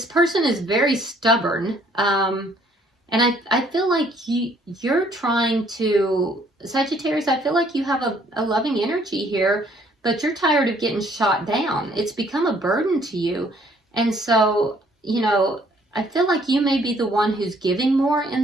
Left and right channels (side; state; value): both; normal; correlation 0.62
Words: person is very stubborn. And I feel like you're trying to, Sagittarius, I feel like you have a loving energy here, but you're tired of getting shot down. It's become a burden to you. And so, you know, I feel like you may be the one who's giving more in